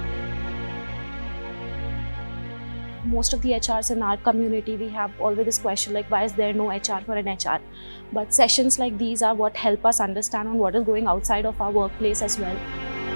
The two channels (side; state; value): both; inverted; correlation -1.00